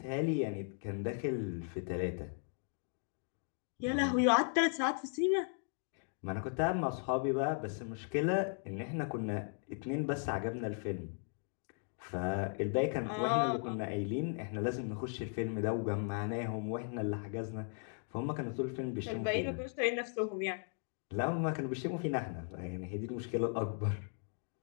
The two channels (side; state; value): right; silent; 53 dB below the other